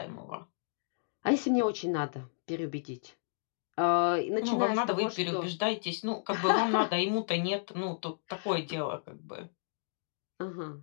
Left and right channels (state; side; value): silent; right; digital silence